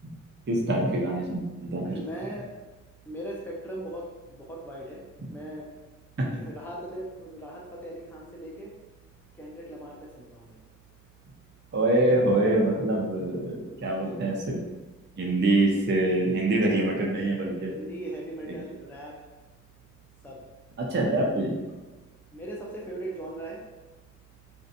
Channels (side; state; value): right; noise; hum, 28 dB below the sound